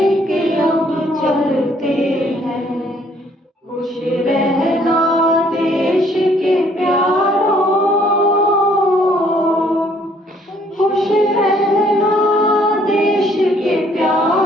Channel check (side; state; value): both; normal; correlation 0.63